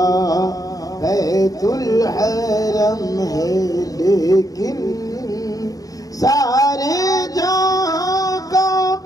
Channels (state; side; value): late; right; 0.18 ms